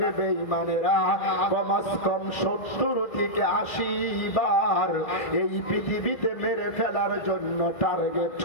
বেঈমানেরা কমস কম 70 থেকে 80 বার এই পৃথিবীতে মেরে ফেলার জন্য টার্গেট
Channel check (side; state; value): right; late; 2.3 ms